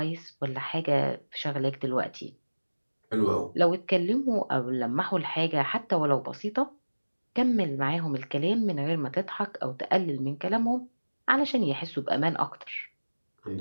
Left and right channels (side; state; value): both; inverted; correlation -1.00